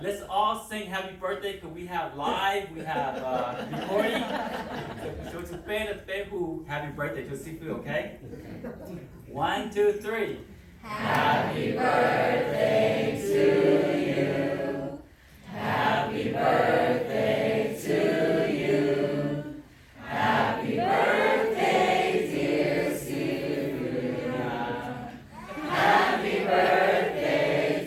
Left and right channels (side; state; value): both; identical; correlation 1.00